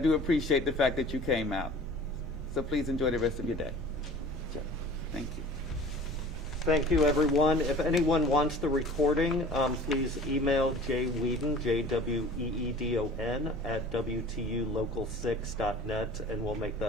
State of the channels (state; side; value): normal; both; correlation 0.44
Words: appreciate the fact that you came out. So please enjoy the rest of your day. Thank you. Thank you, everyone. If anyone wants the recording, please email jweedon, JWEEDON, at WTUlocal6.net, and we'll make